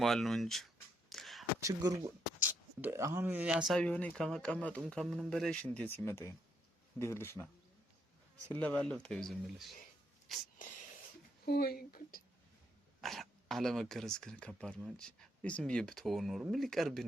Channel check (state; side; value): normal; both; correlation 0.75